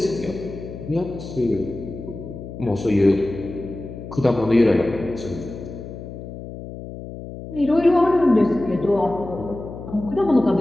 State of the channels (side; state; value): left; noise; hum, 11 dB below the sound